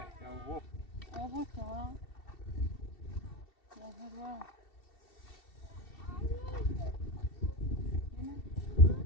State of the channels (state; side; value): late; right; 2.7 ms